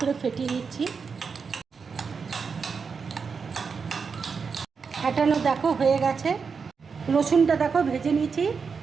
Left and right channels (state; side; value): quieter; left; 5.5 dB